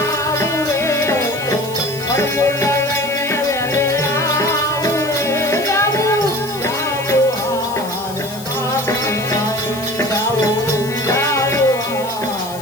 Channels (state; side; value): noise; left; hiss, 15 dB below the sound